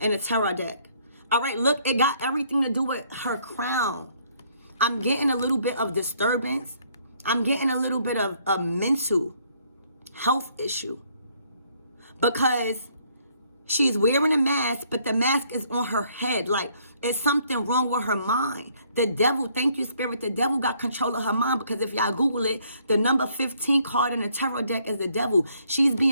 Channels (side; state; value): both; inverted; correlation -0.66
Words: a tarot deck. All right, look, it got everything to do with her crown. I'm getting a little bit of disturbance. I'm getting a little bit of a mental health issue. Because she's wearing a mask, but the mask is on her head. Like, it's something wrong with her mind. The devil, thank you, Spirit, the devil got control of her mind. Because if y'all Google it, the number 15 card in the tarot deck is the devil. She's